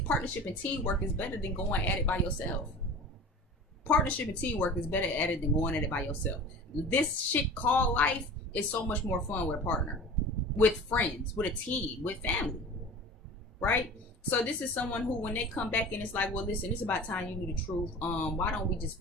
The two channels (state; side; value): normal; both; correlation 0.38